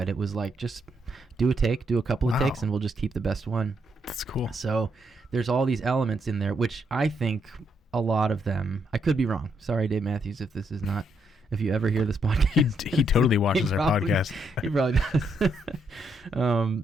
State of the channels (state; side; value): normal; both; correlation 0.76